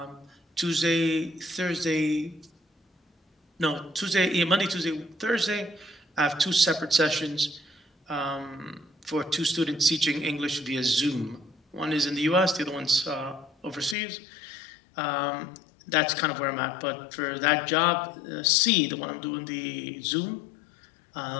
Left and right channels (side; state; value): right; drops out; at 14.0 s